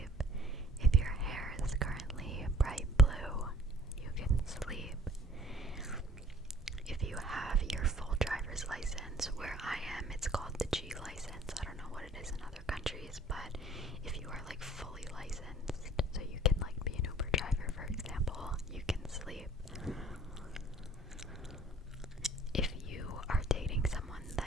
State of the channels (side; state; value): both; normal; correlation 0.53